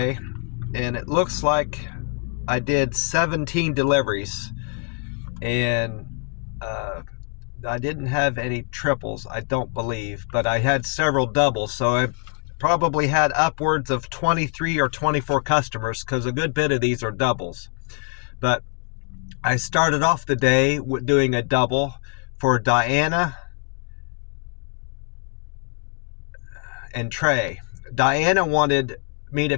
and it looks like I did 17 deliveries, and I didn't have any triples, I don't believe, but I had several doubles, so I probably had upwards of 23 or 24 customers, because a good bit of these are doubles. But I started off the day with doing a double for Diana and Trey. Diana wanted me to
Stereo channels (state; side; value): quieter; right; 39.9 dB